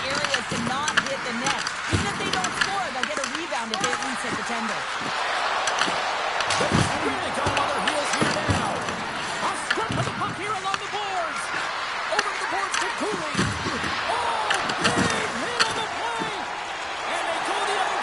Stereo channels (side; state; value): left; noise; rumble, 26 dB below the sound